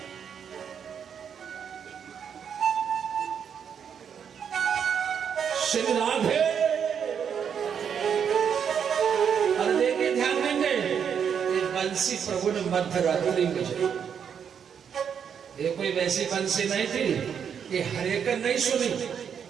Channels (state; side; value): quieter; left; 7.6 dB